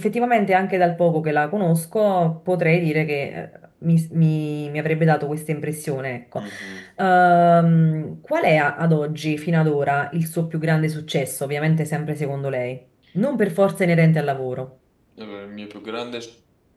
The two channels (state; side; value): identical; both; correlation 1.00